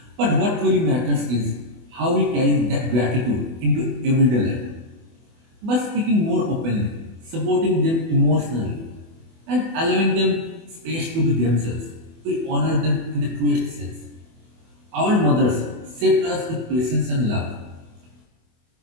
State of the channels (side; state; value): left; late; 24 ms